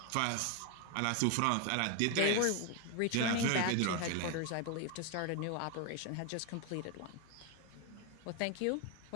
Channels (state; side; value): different; both; correlation 0.01